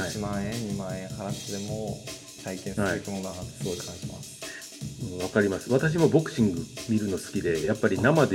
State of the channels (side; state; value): both; identical; correlation 1.00